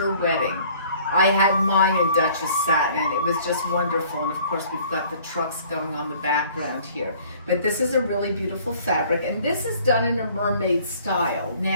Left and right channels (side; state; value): both; inverted; correlation -0.54